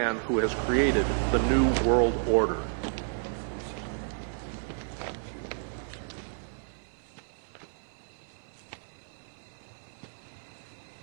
who has created the New World Order.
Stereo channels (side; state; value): left; silent; 57 dB below the other